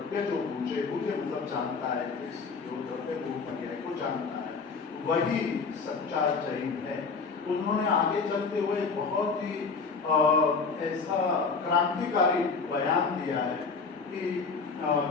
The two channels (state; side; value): quieter; right; 4.9 dB